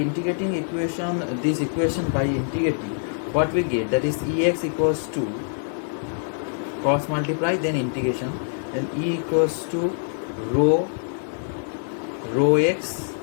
this equation by integrating, what we get, that is ex equals to cross multiply, then integration, then e equals to rho x,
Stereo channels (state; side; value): silent; right; digital silence